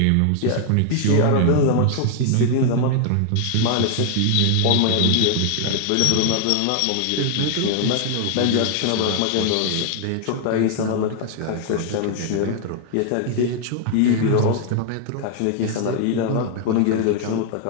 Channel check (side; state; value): both; different; correlation 0.00